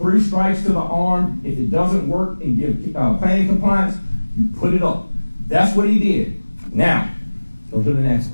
strikes to the arm. If it doesn't work and give planning compliance, you put it up. That's what he did. Now, go to the next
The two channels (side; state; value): both; inverted; correlation -1.00